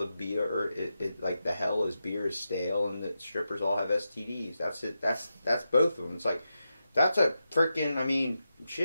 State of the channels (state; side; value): inverted; both; correlation -0.89